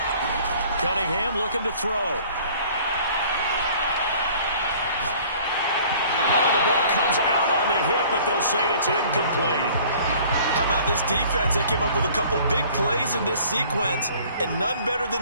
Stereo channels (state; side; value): inverted; both; correlation -0.52